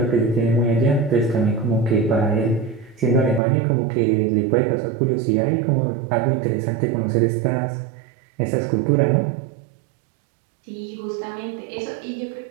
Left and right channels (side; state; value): left; drops out; at 3.4 s